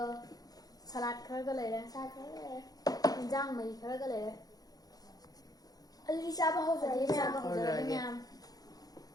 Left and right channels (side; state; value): right; late; 0.18 ms